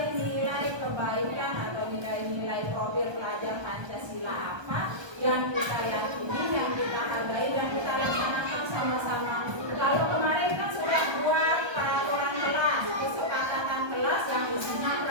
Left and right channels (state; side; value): late; left; 1.2 ms